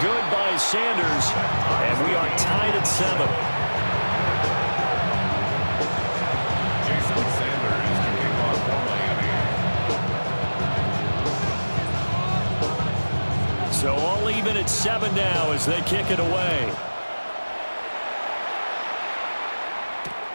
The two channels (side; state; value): both; inverted; correlation -1.00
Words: good by Sanders. And we are tied at 7. So all even at 7 now as they kick it away.